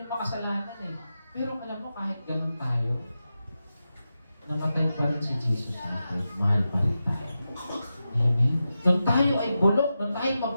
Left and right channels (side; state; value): both; inverted; correlation -0.91